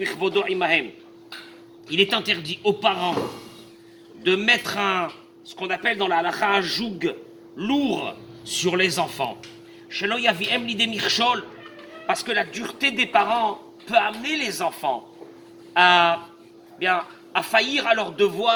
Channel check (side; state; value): both; identical; correlation 1.00